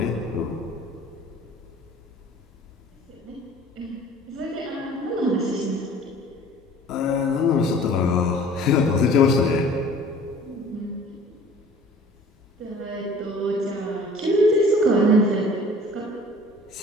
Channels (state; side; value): normal; both; correlation 0.48